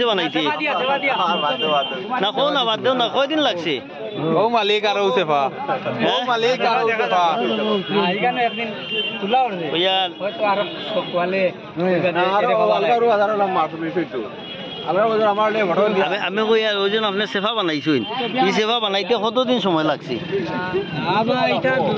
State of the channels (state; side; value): identical; both; correlation 1.00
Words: বানাইতে না কো না বাদ দেও না কয়দিন লাগছে ও মালিক আর ওসেফা ও মালিক আর ওসেফা এখানে একদিন তুলা উঠবে ইয়ার হয়তো আর সকলে আরো হাজার মাছ বেশিটো আমি কই আর ওজন আপনি সেফা বানাইছেন এই সেফা বানাইতে কতদিন সময় লাগছে আবার এটা